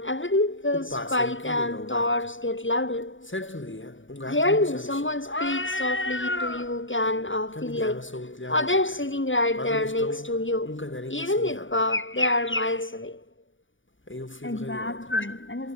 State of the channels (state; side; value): late; right; 0.57 ms